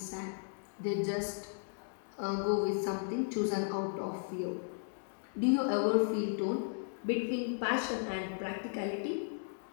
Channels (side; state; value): right; silent; digital silence